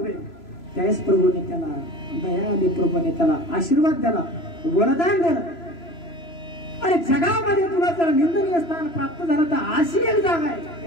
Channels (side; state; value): right; late; 3.0 ms